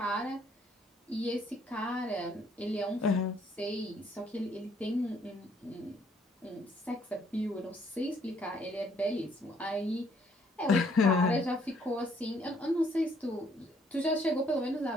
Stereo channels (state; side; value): normal; both; correlation 0.66